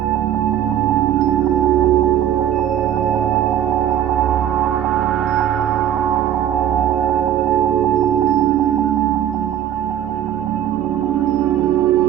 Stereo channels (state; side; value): quieter; left; 10.7 dB